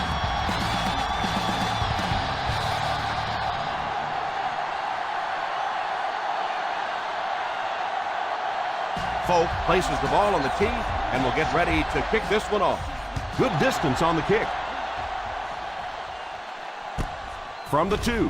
Folk places the ball on the tee and will get ready to kick this one off. Good distance on the kick. From the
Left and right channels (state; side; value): identical; both; correlation 1.00